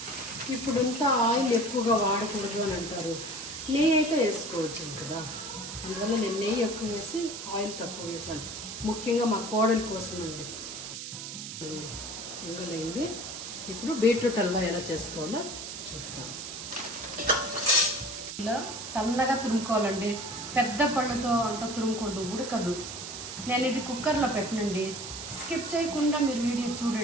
ఇప్పుడంతా ఆయిల్ ఎక్కువగా వాడకూడదు అని అంటారు. నెయ్యి అయితే వేసుకోవచ్చు కదా, అందువల్ల నేను నెయ్యి ఎక్కువ వేసి ఆయిల్ తక్కువ వేసాను. ముఖ్యంగా మా కోడల కోసం అండి. పొంగలైంది. ఇప్పుడు బీట్రూట్ హల్వా ఎలా చేసుకోవాలో చూద్దాం. ఇలా సన్నగా తురుముకోవాలండి. పెద్ద పళ్ళతో అంత తురుముకూడదు, ఉడకదు. నేను ఇది కుక్కర్లో పెట్టనండి. స్కిప్ చేయకుండా మీరు వీడియో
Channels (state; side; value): noise; right; hiss, 8 dB below the sound